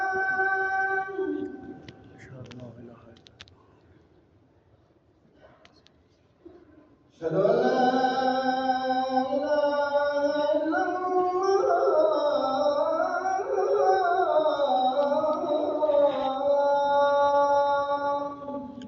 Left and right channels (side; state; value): both; identical; correlation 1.00